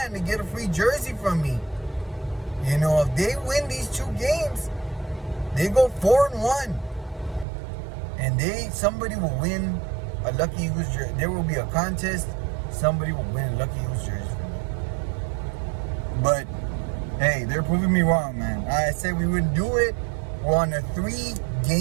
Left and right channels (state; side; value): drops out; left; at 7.5 s